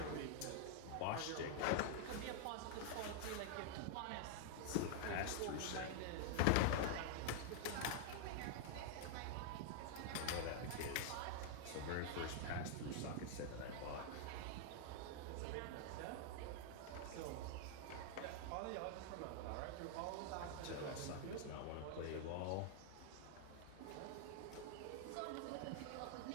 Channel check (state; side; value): different; both; correlation 0.00